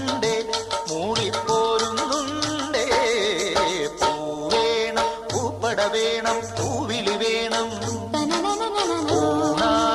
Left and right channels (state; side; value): identical; both; correlation 1.00